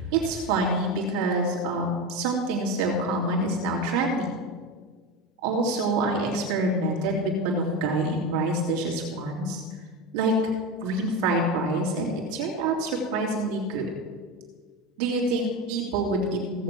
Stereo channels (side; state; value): both; normal; correlation 0.21